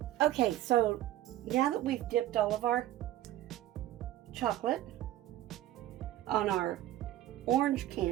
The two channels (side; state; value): left; quieter; 13.8 dB